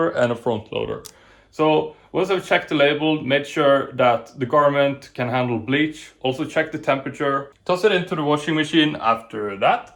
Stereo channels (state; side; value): identical; both; correlation 1.00